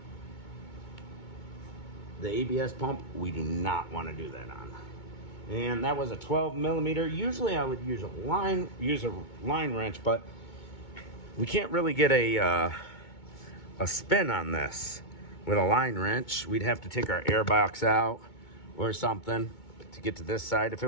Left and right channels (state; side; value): late; right; 2.2 ms